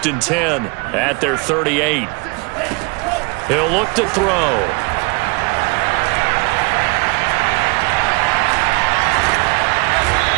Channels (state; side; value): quieter; left; 30.1 dB